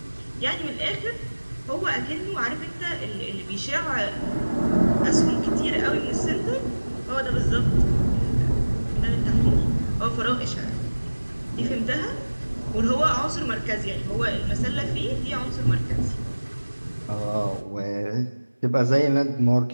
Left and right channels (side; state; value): both; inverted; correlation -1.00